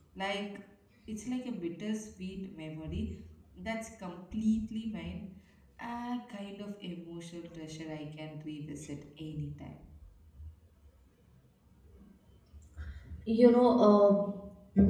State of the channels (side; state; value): both; identical; correlation 1.00